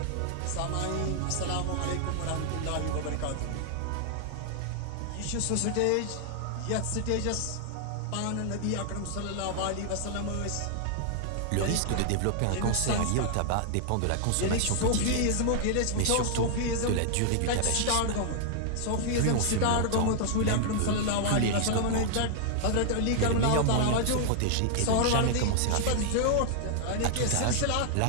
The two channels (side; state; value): both; different; correlation 0.00